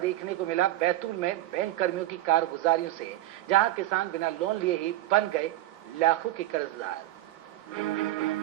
को मिला बैतूल में बैंक कर्मियों की कारगुजारियों से, जहां किसान बिना लोन लिए ही बन गए लाखों के कर्जदार।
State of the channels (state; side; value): quieter; left; 14.9 dB